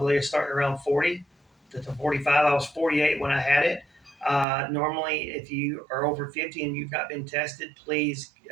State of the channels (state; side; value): drops out; left; at 4.5 s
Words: starting around 40 to 45. I was 48 when I had it. Normally, if you are over 50 and you've not been tested, please